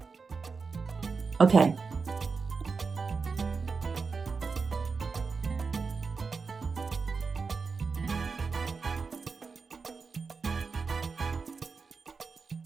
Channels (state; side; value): quieter; left; 4.8 dB